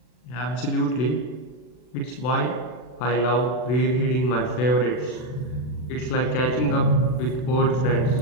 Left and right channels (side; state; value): right; late; 40 ms